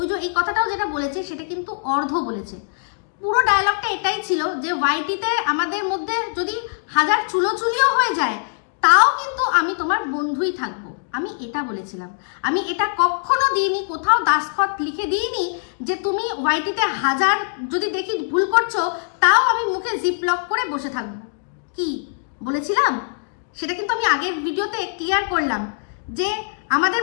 যে এই কথাটাও যেটা বলেছে সেটা কিন্তু অর্ধ বলেছে। পুরো ডায়লগটা এটাই ছিল যে ওয়াইটিতে আমাদের মধ্যে যদি 1000 চুলোচুলিও হয়ে যায় তাও কিন্তু আমি তোমার বন্ধুই থাকবো, আমি এটা বলেছিলাম। আমি এটা কখনো দিইনি, কোথাও দাসখত লিখে দিইনি যে তুমি ওয়াইটিতে 1000 যদি দেখি ভুল করছো তাও আমি মুখে জিপ লক করে বসে থাকবো। কি বলেছিলাম সেটা কিন্তু আমি আগের ভিডিওতে ক্লিয়ার করলাম যে আমাদের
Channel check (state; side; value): silent; right; digital silence